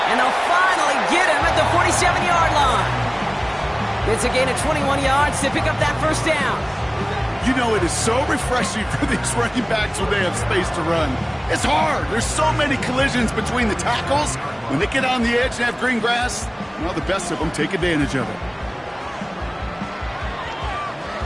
And they'll finally get him at the 47-yard line. It's a gain of 21 yards to pick up that first down. You know, it is so refreshing for these running backs when they have space to run. It's hard. There's so many collisions between the tackles. When they get on the edge and have green grass, well, the best of them take advantage of it.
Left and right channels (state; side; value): identical; both; correlation 1.00